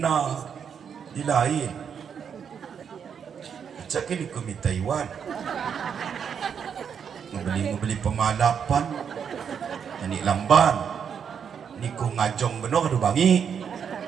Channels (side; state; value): left; quieter; 7.4 dB